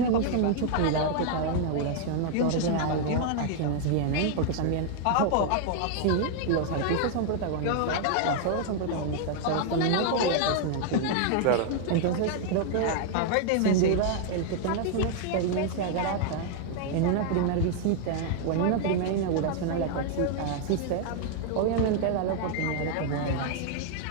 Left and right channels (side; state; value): both; different; correlation 0.00